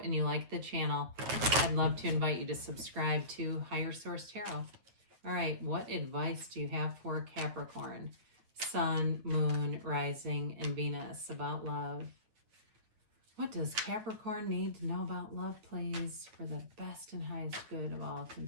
and you like the channel, I'd love to invite you to subscribe to Higher Source Tarot. All right, what advice do you have for Capricorn, Sun, Moon, Rising, and Venus about love? What does Capricorn need to know about love, please, for the best and highest good of all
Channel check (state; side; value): late; left; 9.3 ms